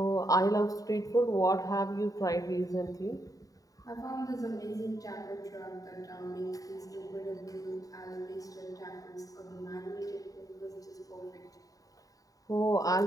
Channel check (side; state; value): right; late; 0.17 ms